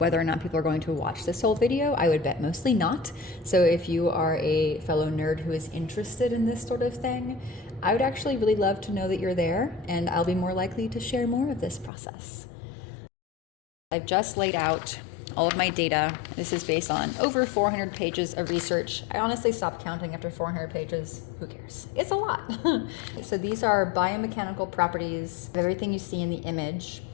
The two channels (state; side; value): drops out; right; at 11.9 s